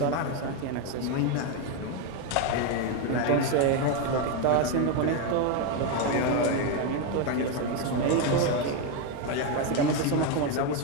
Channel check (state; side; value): different; both; correlation 0.02